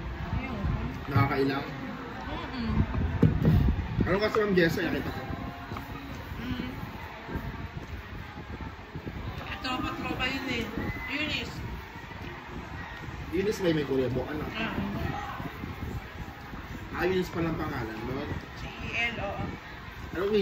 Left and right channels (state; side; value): identical; both; correlation 1.00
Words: Ayun. Nakakailang. Ano kasi ang Jessa, nakita ko. Eunice may kuryebo, ano? Ah. Eunice pa lang pangalan, no? CEL, oo. Anong